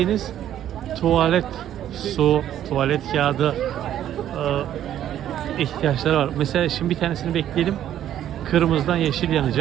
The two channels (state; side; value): quieter; left; 11.3 dB